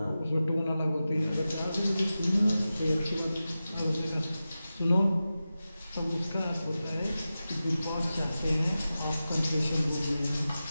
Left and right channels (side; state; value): both; inverted; correlation -0.94